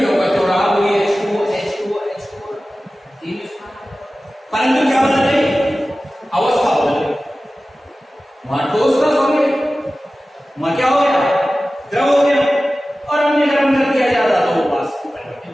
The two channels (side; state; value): both; normal; correlation 0.96